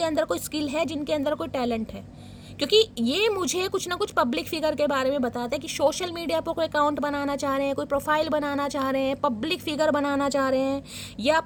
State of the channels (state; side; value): identical; both; correlation 1.00